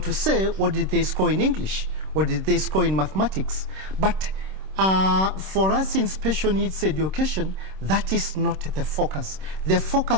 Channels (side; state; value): left; late; 26 ms